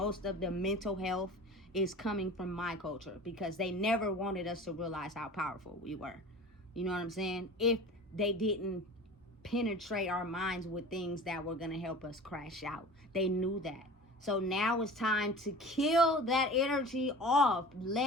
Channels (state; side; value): normal; both; correlation 0.39